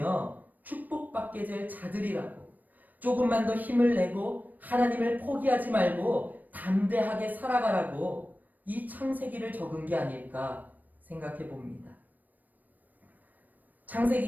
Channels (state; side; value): late; left; 0.085 ms